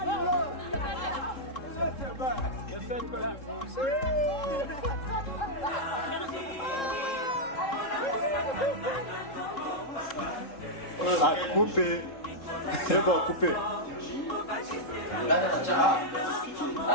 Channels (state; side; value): late; right; 3.7 ms